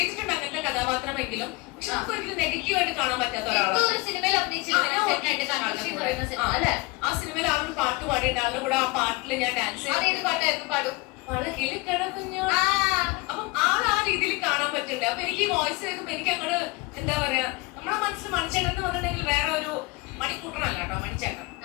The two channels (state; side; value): quieter; right; 24.2 dB